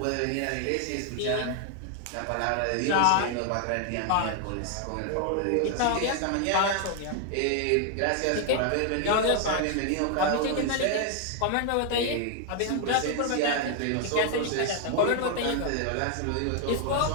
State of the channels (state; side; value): different; both; correlation 0.00